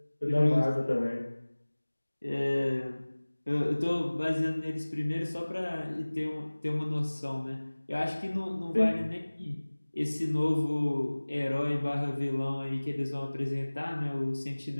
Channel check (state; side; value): inverted; both; correlation -1.00